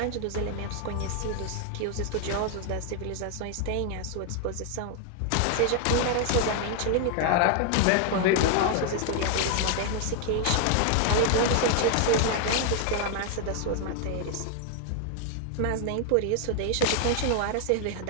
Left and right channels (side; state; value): both; different; correlation 0.00